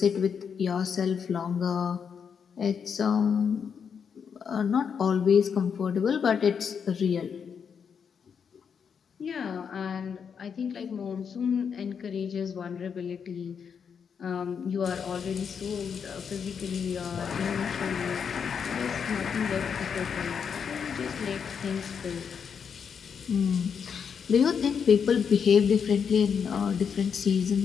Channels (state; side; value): quieter; right; 6.8 dB